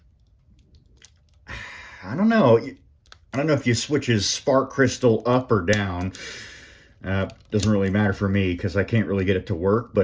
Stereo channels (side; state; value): both; identical; correlation 1.00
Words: don't know. I don't know if you switch his spark crystal up or down. Doesn't really matter for me because I can't really get it to work.